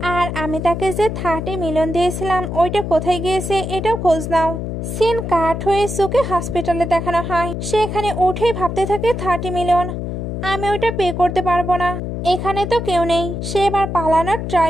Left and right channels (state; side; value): noise; left; hum, 4 dB below the sound